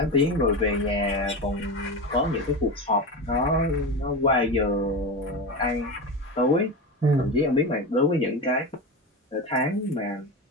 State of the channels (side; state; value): both; normal; correlation 0.23